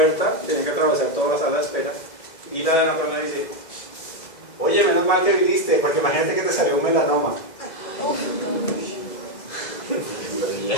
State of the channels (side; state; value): right; late; 2.0 ms